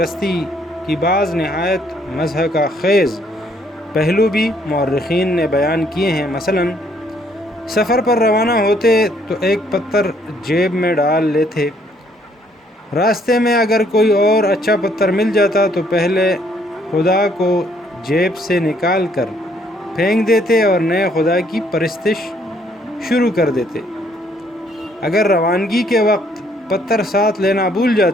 کی بعض نہایت مضحکہ خیز پہلو بھی مورخین نے بیان کیے ہیں۔ مثلا سفر پر روانہ ہوتے تو ایک پتھر جیب میں ڈال لیتے، راستے میں اگر کوئی اور اچھا پتھر مل جاتا تو پہلے خدا کو جیب سے نکال کر پھینک دیتے اور نئے خدا کی پرستش شروع کر دیتے۔ اگر روانگی کے وقت پتھر ساتھ لینا بھول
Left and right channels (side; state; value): both; normal; correlation 0.66